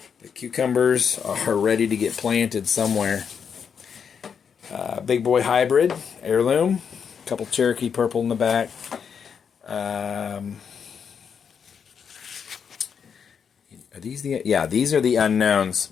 The cucumbers are ready to get planted somewhere. Big boy hybrid, heirloom. A couple Cherokee purple in the back. Are these these are the unknowns,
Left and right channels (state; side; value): quieter; right; 6.9 dB